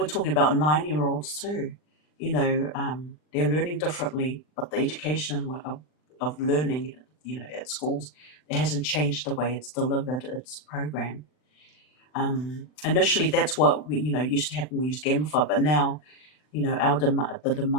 talking about 9-year-olds too. They're learning differently, but the education of learning, at schools, it hasn't changed the way it's delivered its program. Initially, that's what we, used to happen. We used Gamify, but now, the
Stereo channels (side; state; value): right; late; 39 ms